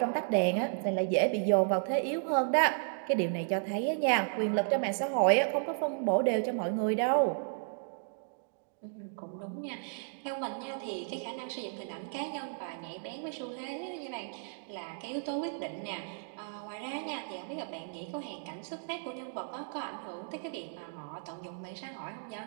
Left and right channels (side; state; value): left; silent; digital silence